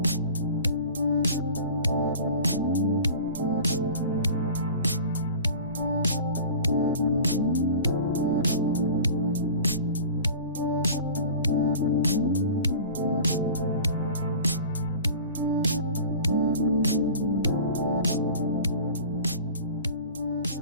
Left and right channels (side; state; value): both; inverted; correlation -0.40